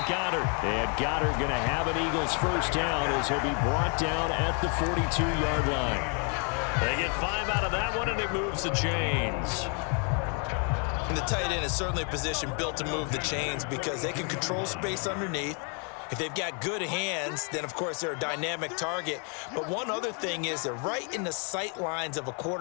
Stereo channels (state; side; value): quieter; right; 38.9 dB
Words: Goddard. And Goddard going to have an Eagles first down as he'll be brought down at the 42-yard line. They get 5 out of that one, and it moves the chains. And the tight end is certainly a position built to move the chains because they can control space underneath. If they've got good hands, then, of course, they're a dynamic target. But one other thing is they're right in the sight lines of a